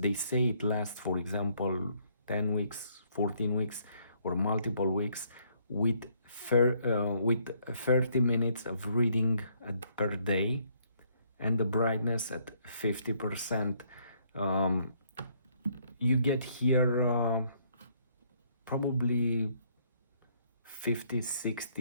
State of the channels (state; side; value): inverted; both; correlation -0.68